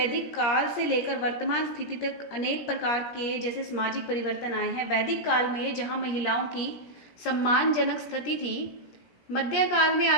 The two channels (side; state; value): right; late; 17 ms